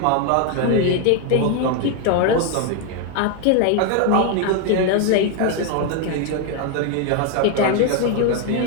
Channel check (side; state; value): both; different; correlation 0.01